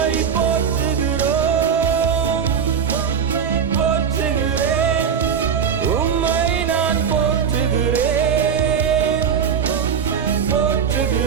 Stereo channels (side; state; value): left; quieter; 7.1 dB